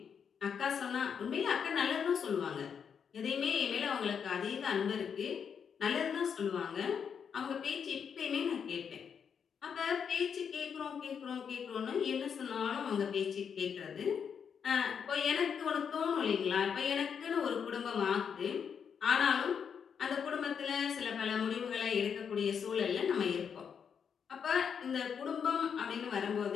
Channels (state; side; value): quieter; right; 7.1 dB